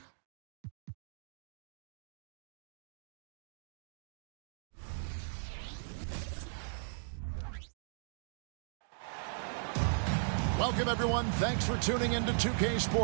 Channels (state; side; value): silent; left; digital silence